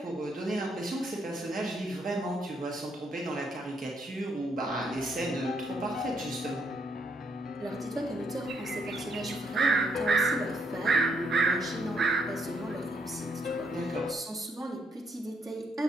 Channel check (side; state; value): both; normal; correlation 0.73